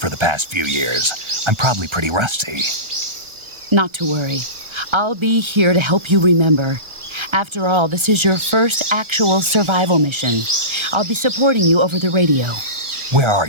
the past few years. I'm probably pretty rusty. Not to worry. I'll be here to help you remember. After all, this is your first actual survival mission. I'll be supporting you over the radio. Where are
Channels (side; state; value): left; late; 1.3 ms